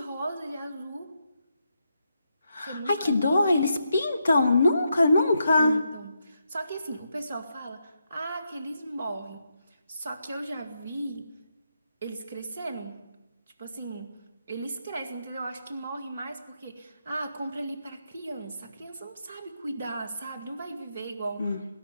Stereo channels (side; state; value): both; inverted; correlation -0.82